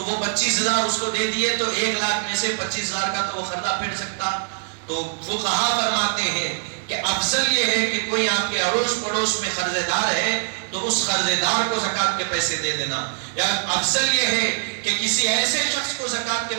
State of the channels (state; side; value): silent; left; digital silence